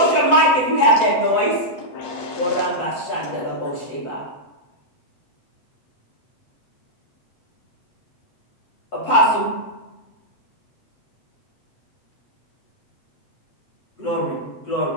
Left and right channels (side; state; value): right; late; 8.0 ms